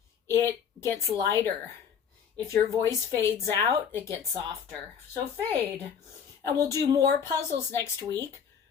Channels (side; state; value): right; quieter; 7.4 dB